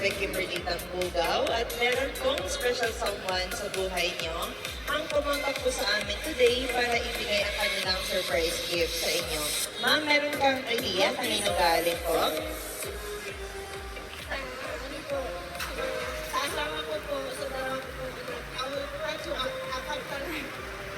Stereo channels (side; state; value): both; identical; correlation 1.00